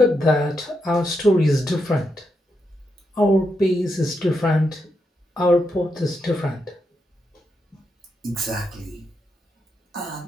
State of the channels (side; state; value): both; normal; correlation 0.83